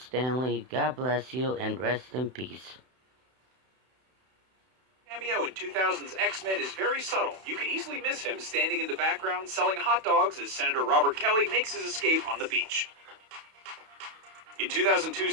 Lee. God bless you and rest in peace. Cameo in 2000's X-Men is very subtle. You could easily miss him standing in the background selling hot dogs as Senator Robert Kelly makes his escape on the beach. In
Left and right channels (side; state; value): left; late; 31 ms